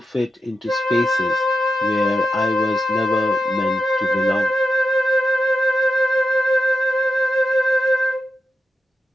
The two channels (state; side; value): normal; both; correlation 0.89